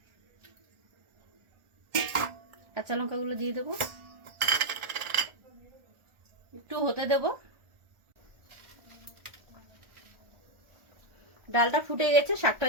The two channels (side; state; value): left; late; 1.4 ms